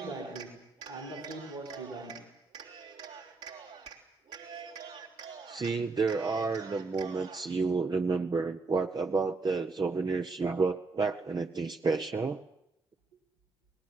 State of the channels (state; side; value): quieter; left; 4.0 dB